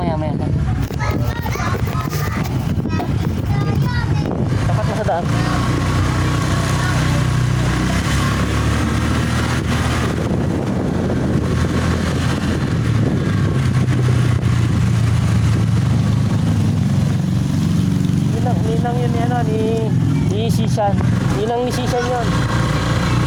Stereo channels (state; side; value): identical; both; correlation 1.00